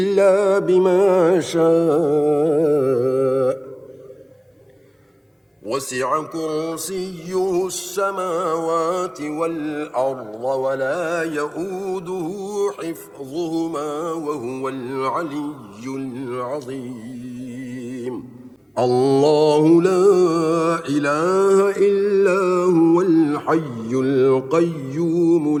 بما شاء وسع كرسيه السماوات والأرض ولا يؤوده حفظهما وهو العلي العظيم الله لا إله إلا هو الحي القيوم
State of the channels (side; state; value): both; identical; correlation 1.00